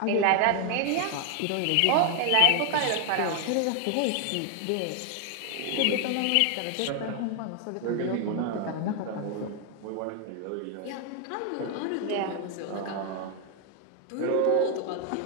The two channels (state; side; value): different; both; correlation 0.00